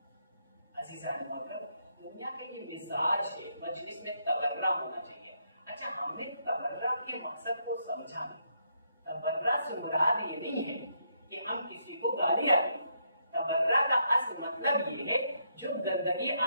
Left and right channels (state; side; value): inverted; both; correlation -0.76